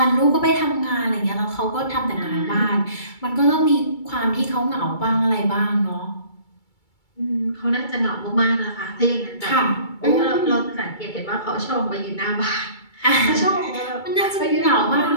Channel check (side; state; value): right; late; 2.3 ms